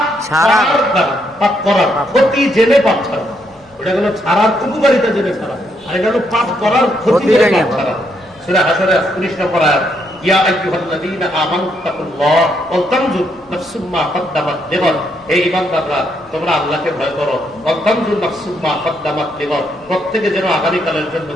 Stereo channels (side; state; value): both; normal; correlation 0.75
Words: ছাড়ার, পাপ করার ক্ষতি জেনে পাপ ছাড়া। ওটা হলো ছাড়ার উপকারিতা জেনে ছাড়া, আর এটা হলো পাপ করার ক্ষতি ক্ষতি করে লেগে পাপ ছাড়া। সূরা হাশরে 19 নম্বর আয়াত, ইয়া আইয়ুহাল্লাযীনা আমানু তাকুল্লাহ ওয়া তানজুর নাফসুম মা কদ্দামাত লিগাদ। হে ঈমানদাররা, তোমরা আল্লাহকে ভয় করো। ওয়া তানজুর নাফসুম মা কদ্দামাত লিগাদ, প্রত্যেকে যেন আগামীকালের জন্য